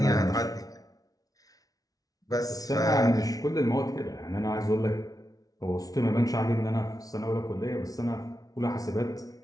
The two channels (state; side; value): late; right; 0.18 ms